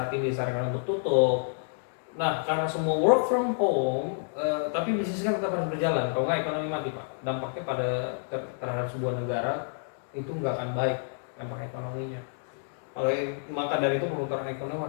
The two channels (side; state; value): right; silent; digital silence